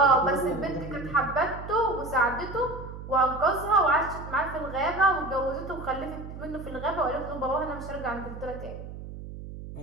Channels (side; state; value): right; noise; hum, 11 dB below the sound